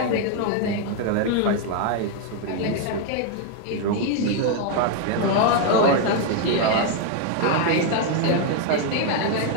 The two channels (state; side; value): different; both; correlation 0.00